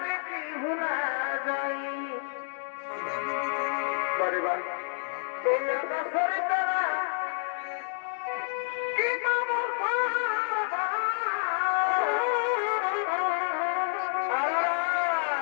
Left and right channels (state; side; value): silent; right; digital silence